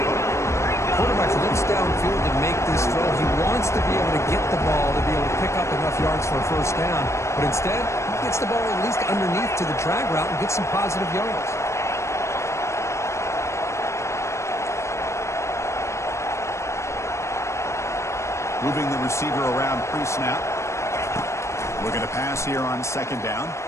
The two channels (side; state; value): right; late; 0.14 ms